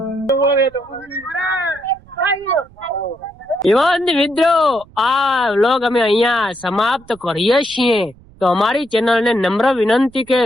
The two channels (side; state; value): right; noise; rumble, 26 dB below the sound